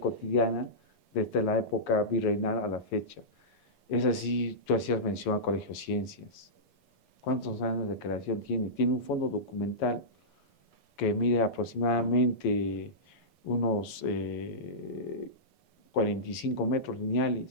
desde la época virreinal a la fecha. Es así, tú hacías mención al Colegio de Ciencias. ¿Cuántos años de creación tiene? Tiene un fondo documental que mide aproximadamente unos 45 metros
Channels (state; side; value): late; right; 7.1 ms